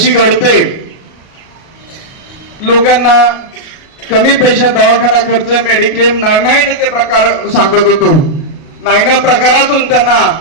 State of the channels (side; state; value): right; late; 37 ms